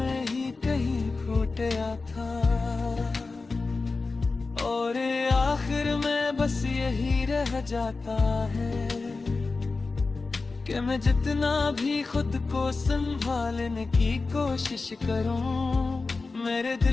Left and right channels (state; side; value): quieter; right; 3.9 dB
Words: ही कहीं खो गया था। और आखिर में बस यही रह जाता है कि मैं जितना भी खुद को संभालने की कोशिश करूं, मेरे